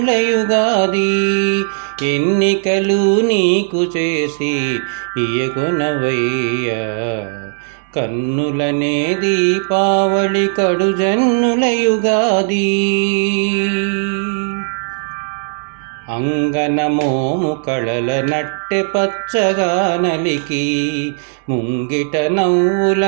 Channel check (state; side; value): silent; left; 64 dB below the other